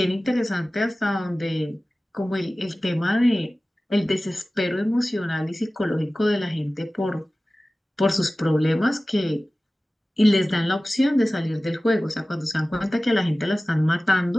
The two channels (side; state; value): both; normal; correlation 0.97